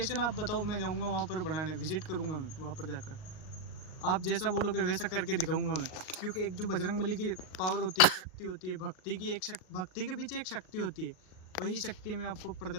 आप बताओ, मैं जाऊँगा वहाँ पर बनाने, विजिट करूँगा मैं वहाँ पर जाकर। आप जैसा बोलोगे वैसा करके दिखाऊंगा मैं। क्योंकि एक जो बजरंगबली की पावर होती है, शक्ति होती है, भक्ति की एक भक्ति के पीछे एक शक्ति होती है, वही शक्ति मैं आपको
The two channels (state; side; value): late; right; 38 ms